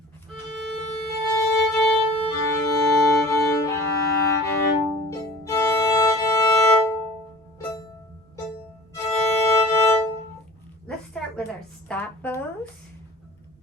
Let's start with our stop bows.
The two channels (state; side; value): normal; both; correlation 0.43